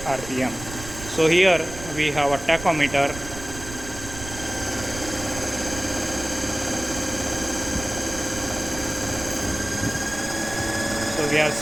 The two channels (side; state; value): right; noise; rumble, 12 dB below the sound